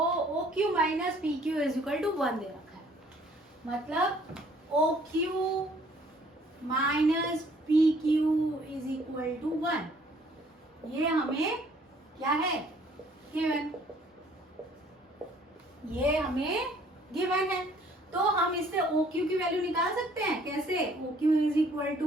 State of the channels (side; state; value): both; normal; correlation 0.59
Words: Q minus P Q is equal to 1 दे रखा है, मतलब O Q minus P Q is equal to 1, ये हमें क्या है गिवन, ये हमें गिवन है। तो हम इससे ओ क्यू की वैल्यू निकाल सकते हैं, कैसे, O Q is equal